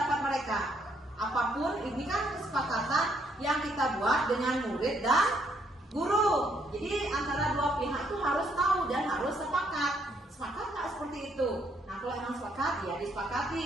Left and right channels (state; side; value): normal; both; correlation 0.71